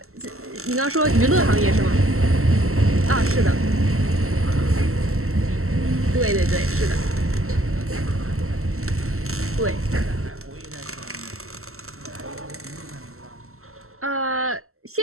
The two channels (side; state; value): left; late; 0.63 ms